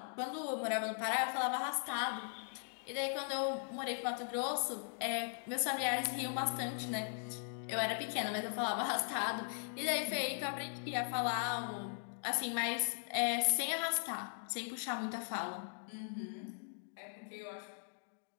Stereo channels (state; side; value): silent; right; digital silence